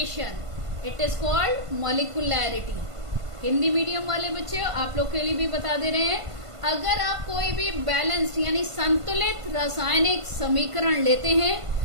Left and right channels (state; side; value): late; left; 1.5 ms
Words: it is called molecularity. Hindi medium वाले बच्चे आप लोग के लिए भी बता दे रहे हैं, अगर आप कोई भी बैलेंस्ड यानी संतुलित रासायनिक समीकरण लेते हैं